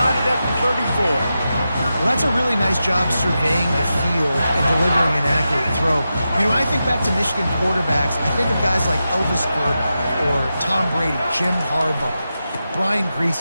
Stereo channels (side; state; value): both; inverted; correlation -0.90